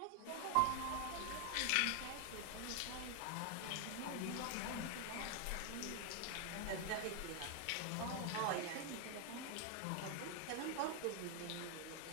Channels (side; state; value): both; different; correlation 0.00